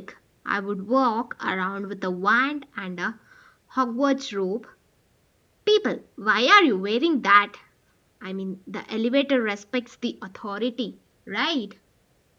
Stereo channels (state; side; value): identical; both; correlation 1.00